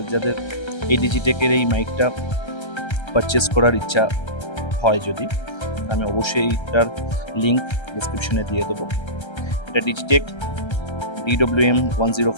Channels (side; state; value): right; late; 1.3 ms